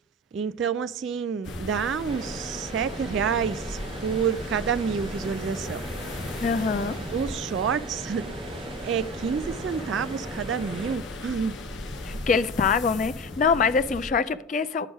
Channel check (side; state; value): both; normal; correlation 0.32